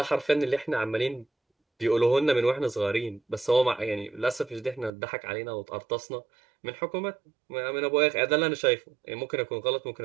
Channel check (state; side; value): drops out; left; at 4.9 s